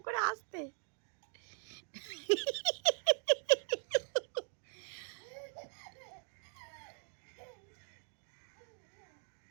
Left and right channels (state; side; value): silent; left; 51 dB below the other